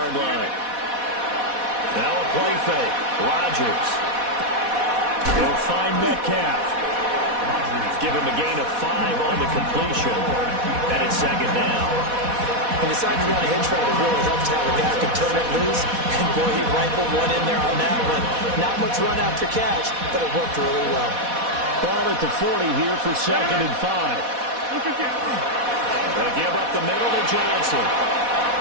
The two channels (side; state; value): left; late; 4.1 ms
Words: line. Now a play fake. Rodgers. He'll find Metcalf. Give him a gain of 5 on the completion. And it's 2nd down. And decided to run a hitch route. It really helps to have a guy who can turn it loose. And boy, he rifled one in there on that one. Not much run after catch, but it worked really well. Ball at the 40 here for 2nd and 5. They'll give up the middle to Johnson.